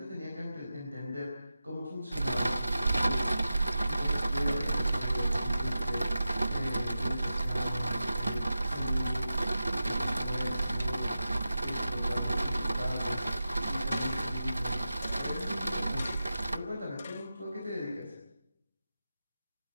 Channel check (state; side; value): inverted; both; correlation -0.92